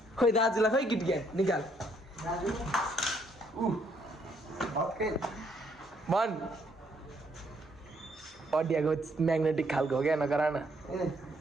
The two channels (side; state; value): both; normal; correlation 0.70